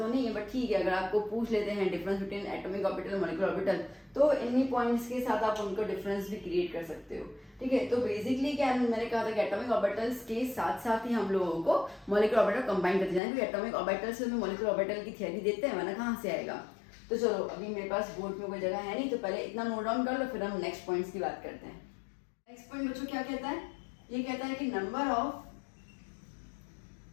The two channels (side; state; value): right; drops out; at 13.2 s